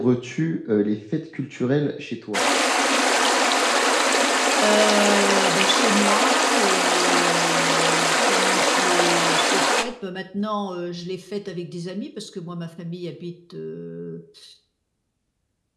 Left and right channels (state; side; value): identical; both; correlation 1.00